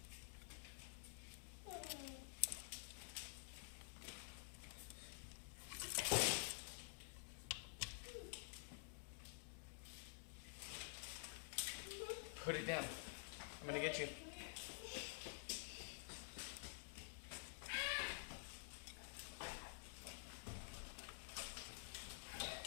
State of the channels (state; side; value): silent; right; digital silence